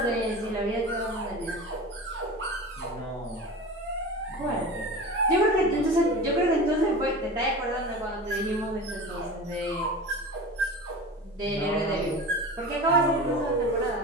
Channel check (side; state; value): both; normal; correlation 0.32